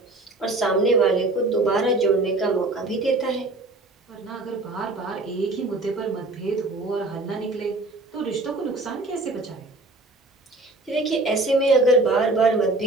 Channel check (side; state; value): left; quieter; 3.0 dB